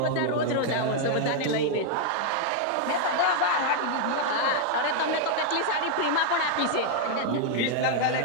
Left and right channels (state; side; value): different; both; correlation 0.00